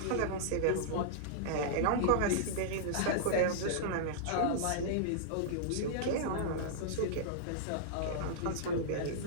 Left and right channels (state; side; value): different; both; correlation -0.02